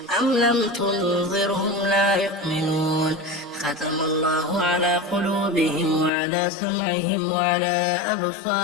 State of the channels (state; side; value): drops out; right; at 6.1 s